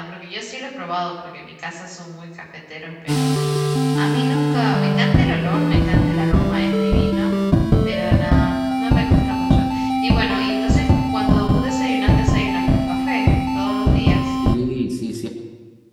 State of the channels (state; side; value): identical; both; correlation 1.00